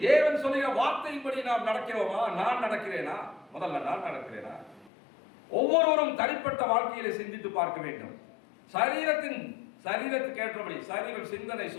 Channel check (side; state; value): right; drops out; at 4.9 s